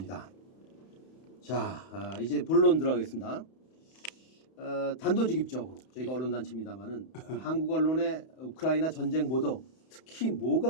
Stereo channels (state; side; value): late; right; 31 ms